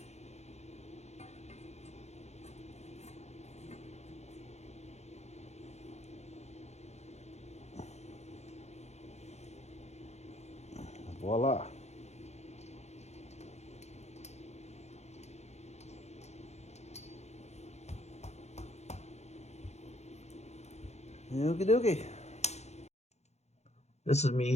Voila. Okie dokie. This is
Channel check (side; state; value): right; late; 0.32 ms